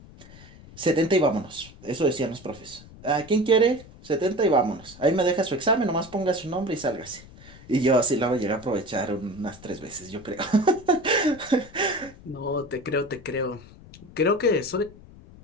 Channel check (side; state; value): left; noise; rumble, 20 dB below the sound